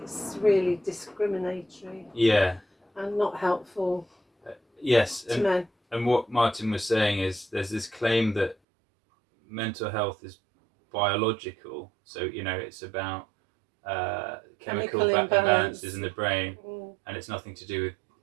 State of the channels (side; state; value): left; drops out; at 8.6 s